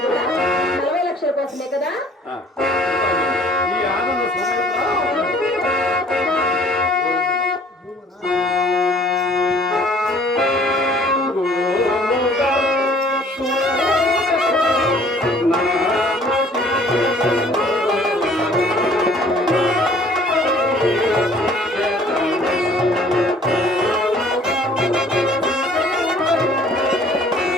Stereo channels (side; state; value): both; normal; correlation 0.54